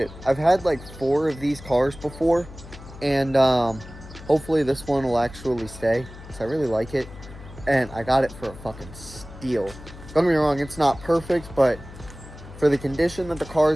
I've had like 4 of these cars before, and hopefully this one will actually stay, because I really like it, and I got it for a fucking steal. Don't get me wrong, it's not perfect, but for the condition that the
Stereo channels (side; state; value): left; noise; hum, 16 dB below the sound